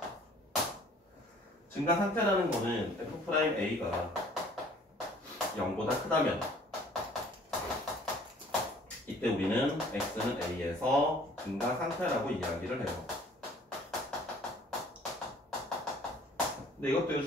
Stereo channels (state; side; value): normal; both; correlation 0.54